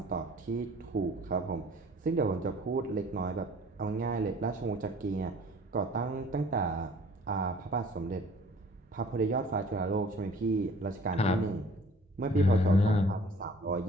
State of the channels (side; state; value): both; normal; correlation 0.52